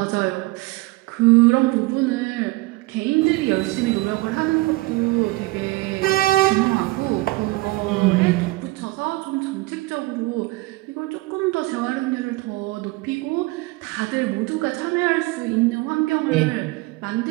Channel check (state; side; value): quieter; left; 21.5 dB